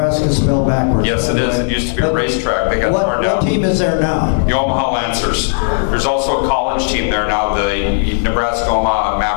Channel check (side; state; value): right; silent; digital silence